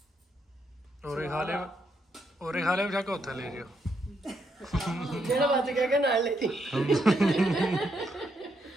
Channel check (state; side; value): normal; both; correlation 0.78